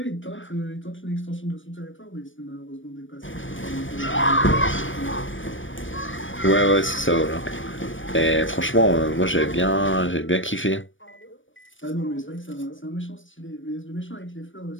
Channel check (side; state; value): right; late; 0.56 ms